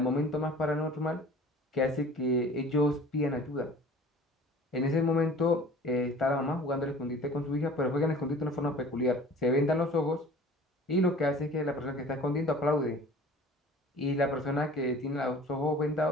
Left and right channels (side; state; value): both; normal; correlation 0.45